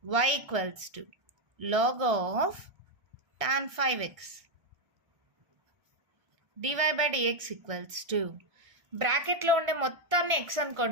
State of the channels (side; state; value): left; late; 1.6 ms